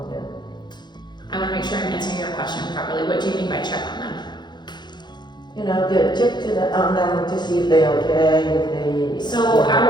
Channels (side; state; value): right; late; 0.21 ms